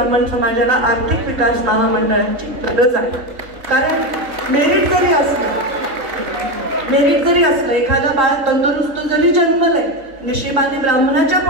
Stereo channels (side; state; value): left; late; 3.8 ms